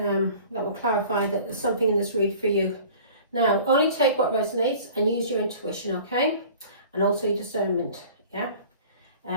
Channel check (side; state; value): both; inverted; correlation -0.45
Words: will clarify that there's something in this read for you. Now, only take what resonates and use your intuition, okay? And also your discernment, yeah?